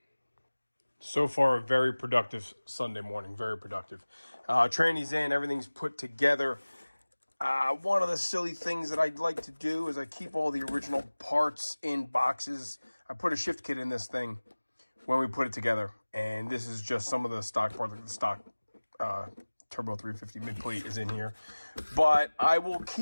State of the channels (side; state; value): both; inverted; correlation -1.00